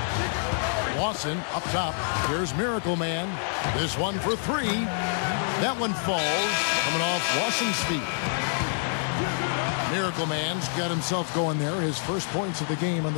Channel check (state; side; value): silent; right; digital silence